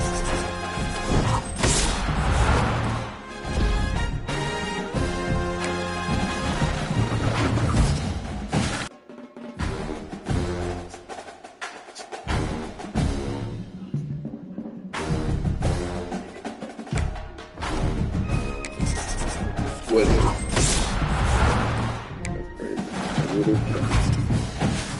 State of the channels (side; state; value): both; identical; correlation 1.00